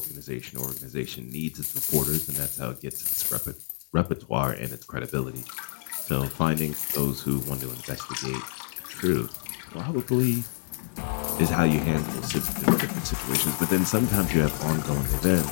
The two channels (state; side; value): silent; right; digital silence